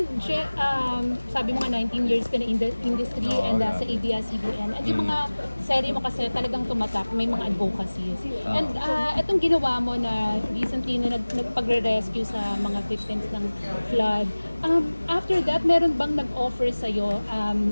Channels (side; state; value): both; inverted; correlation -1.00